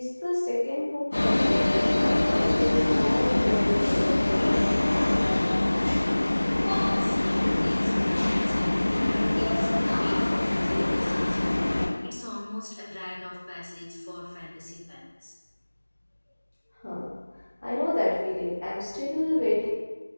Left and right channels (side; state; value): both; inverted; correlation -1.00